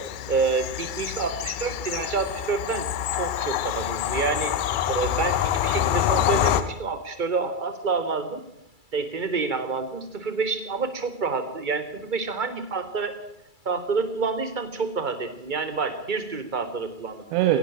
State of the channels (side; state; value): left; late; 2.3 ms